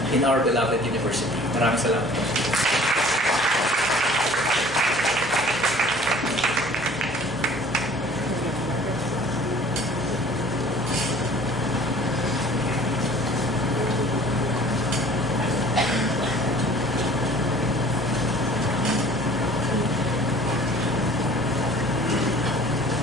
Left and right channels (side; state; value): both; normal; correlation 0.49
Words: in our beloved university. Maraming salamat.